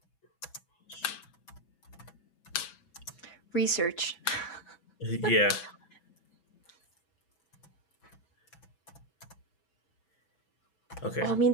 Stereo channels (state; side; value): late; right; 6.6 ms